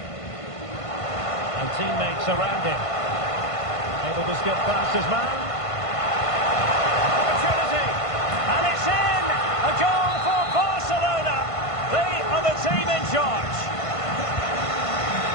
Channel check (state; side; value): late; right; 1.5 ms